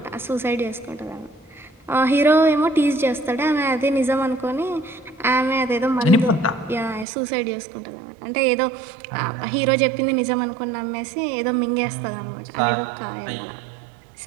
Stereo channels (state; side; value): drops out; left; at 7.1 s